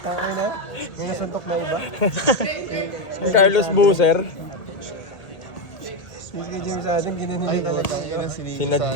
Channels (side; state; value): right; late; 1.8 ms